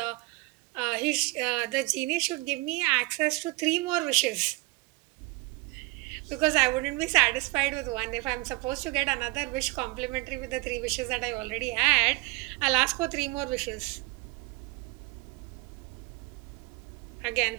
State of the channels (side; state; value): left; quieter; 25.0 dB